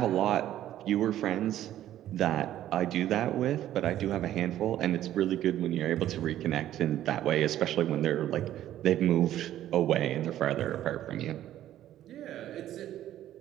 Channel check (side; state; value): left; quieter; 12.5 dB